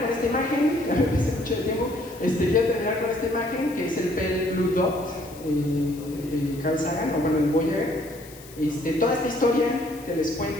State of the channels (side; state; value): left; noise; hiss, 20 dB below the sound